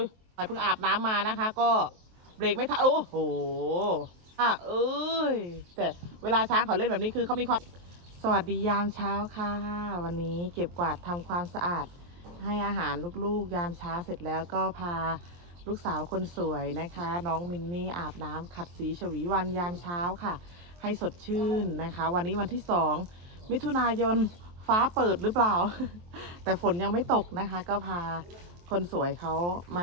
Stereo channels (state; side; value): late; left; 23 ms